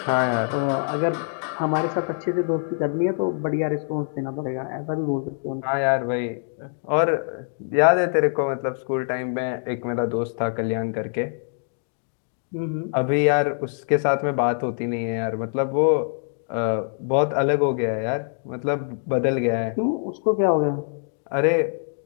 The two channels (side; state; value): right; silent; digital silence